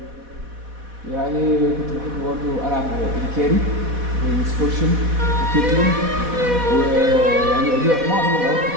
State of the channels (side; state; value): left; late; 4.1 ms